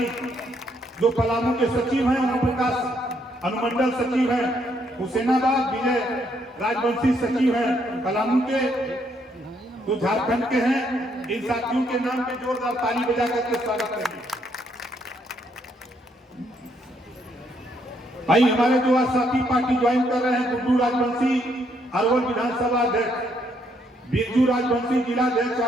जो पलामू के सचिव हैं, ओम प्रकाश अनुमंडल सचिव हैं, हुसैनाबाद विजय राजवंशी सचिव हैं पलामू के, तो झारखंड के हैं। इन साथियों के नाम पे जोरदार ताली बजा करके स्वागत करिए। भाई हमारे जो आज साथी पार्टी ज्वाइन कर रहे हैं, गुड्डू राजवंशी अरवल विधानसभा अध्यक्ष, बिरजू राजवंशी जिलाध्यक्ष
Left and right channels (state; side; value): normal; both; correlation 0.72